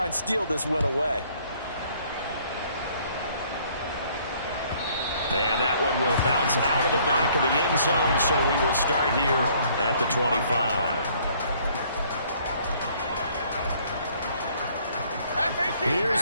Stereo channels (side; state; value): both; inverted; correlation -0.61